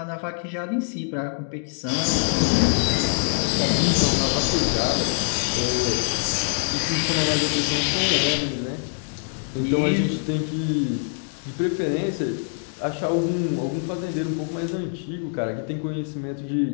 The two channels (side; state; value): right; silent; 62 dB below the other